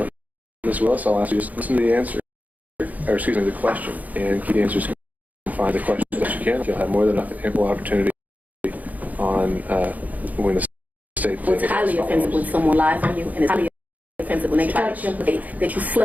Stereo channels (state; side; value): late; left; 0.078 ms